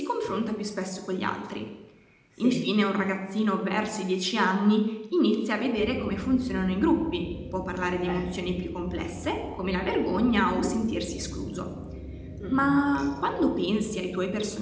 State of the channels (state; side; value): identical; both; correlation 1.00